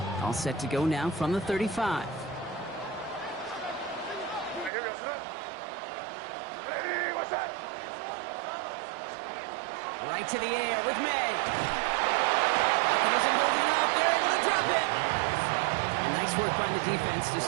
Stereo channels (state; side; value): drops out; left; at 4.7 s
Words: All set to go now from the 35. Right to the air with May. It isn't holding up. They're able to drop it. And nice work by the defense to